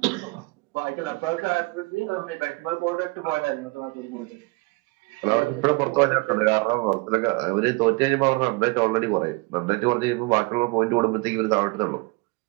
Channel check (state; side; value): quieter; left; 26.4 dB